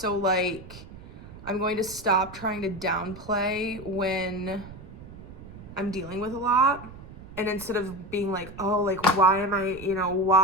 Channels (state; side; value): noise; right; rumble, 16 dB below the sound